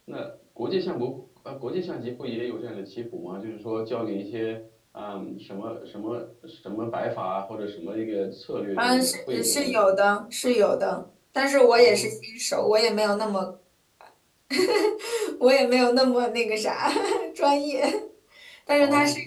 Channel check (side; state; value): both; identical; correlation 1.00